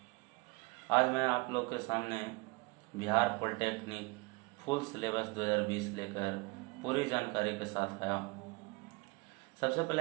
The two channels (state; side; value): quieter; left; 27.0 dB